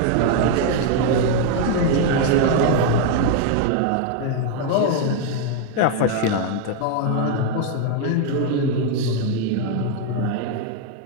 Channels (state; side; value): different; both; correlation 0.01